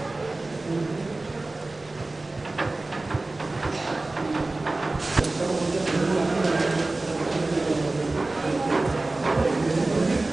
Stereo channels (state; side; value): quieter; left; 3.1 dB